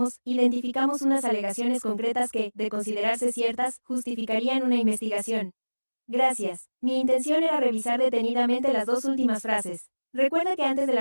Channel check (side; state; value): both; inverted; correlation -1.00